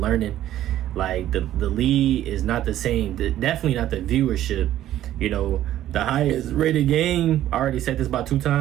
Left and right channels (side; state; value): left; quieter; 12.8 dB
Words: like the league is not the same. Definitely not the viewership. You know, the highest rated game, I already said this about 2